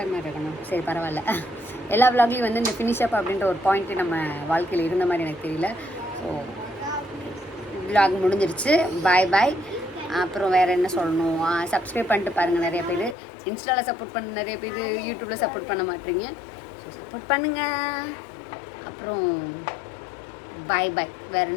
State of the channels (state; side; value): drops out; right; at 13.2 s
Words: இருக்கணும். சரி பரவாயில்ல, எல்லா விலாக்லேயும் வந்து இந்த ஃபினிஷ் அப் அப்படின்ற ஒரு பாயிண்ட்டு நம்ம வாழ்க்கையில் இருந்த மாதிரி எனக்கு தெரியல. ஸோ விலாக் முடிஞ்சிருச்சு. பாய் பாய். அப்புறம் வேறு என்ன சொல்லணும், சப்ஸ்கிரைப் பண்ணிட்டு பாருங்கள். நிறைய பேர் இன்ஸ்டாவில் சப்போர்ட் பண்ண, நிறைய பேர் யூடியூப்பில் சப்போர்ட் பண்ண மாட்டீங்க. ஸோ சப்போர்ட் பண்ணுங்கள். அப்புறம் பாய் பாய். வேறு